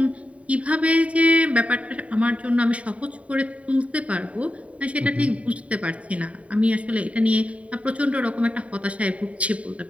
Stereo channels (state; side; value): late; left; 0.066 ms